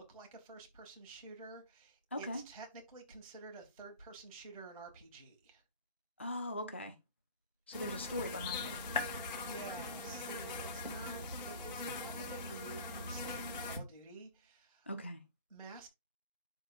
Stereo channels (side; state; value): both; inverted; correlation -0.40